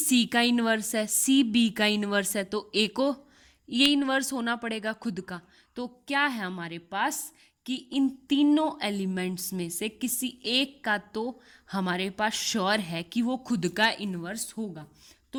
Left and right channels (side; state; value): both; identical; correlation 1.00